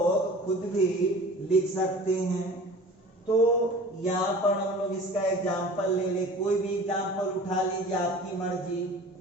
सकते हैं, तो यहाँ पर हम लोग इसका एग्जांपल ले ले, कोई भी एग्जांपल उठा लीजिए, आपकी मर्जी।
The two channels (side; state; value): both; normal; correlation 0.42